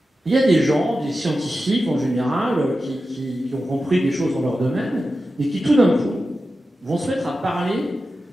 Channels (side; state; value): both; normal; correlation 0.92